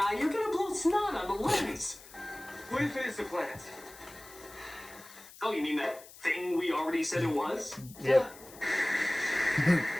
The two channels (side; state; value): left; noise; hiss, 19 dB below the sound